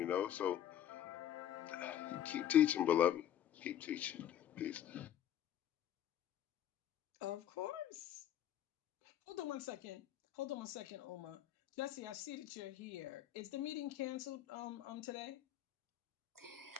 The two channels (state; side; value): quieter; right; 10.9 dB